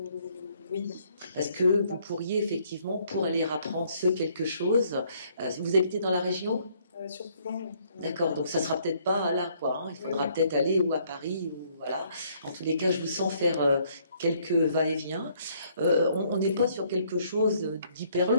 Oui. Est-ce que vous pourriez effectivement, pour aller apprendre ce quelque chose, vous habitez dans la région? Sur Toulon. D'accord, donc ça sera peut-être pas là, quoi. Hein. Il faudra peut-être aller ou à Paris, ou voilà. En tous les cas, je vous sens faire quelques va-et-vient. On n'est pas sur quelque chose d'hyper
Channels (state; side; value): inverted; both; correlation -0.66